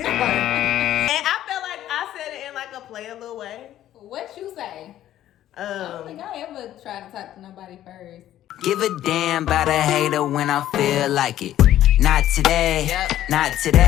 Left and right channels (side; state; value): right; quieter; 12.6 dB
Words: I felt like I said it in like a play a little way. What you say? I don't think I ever tried to talk to nobody first. Give a damn about a hater when I feel like it. Not today, not